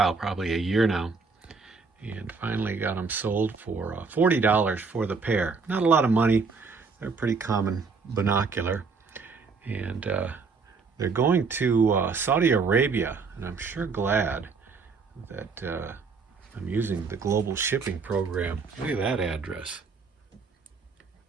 probably a year now. And finally got them sold for $40 for the pair. Not a lot of money. They're a pretty common binocular. And they're going to Saudi Arabia. And I'm sure glad that I'm using the global shipping program. Look at that address.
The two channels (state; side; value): quieter; left; 4.8 dB